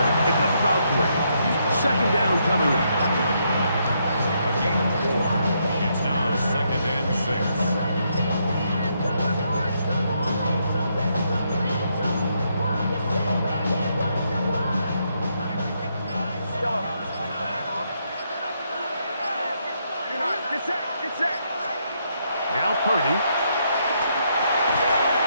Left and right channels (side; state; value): both; inverted; correlation -0.76